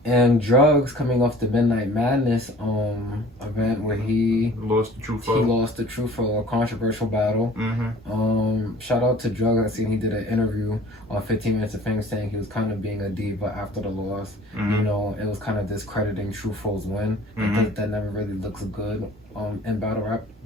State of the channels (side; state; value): both; normal; correlation 0.49